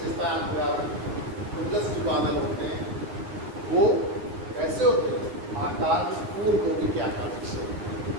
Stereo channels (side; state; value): left; late; 9.7 ms